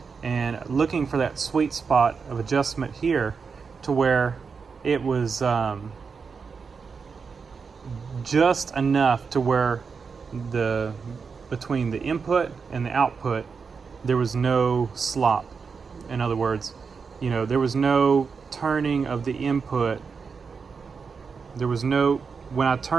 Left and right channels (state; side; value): quieter; left; 5.4 dB